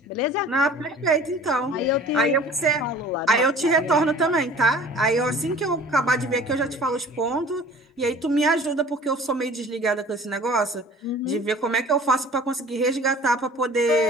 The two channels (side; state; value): both; normal; correlation 0.46